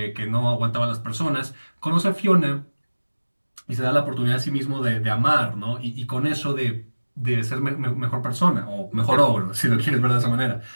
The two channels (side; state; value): both; inverted; correlation -1.00